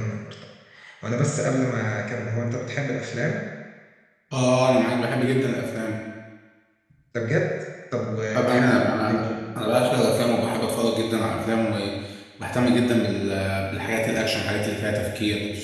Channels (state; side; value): identical; both; correlation 1.00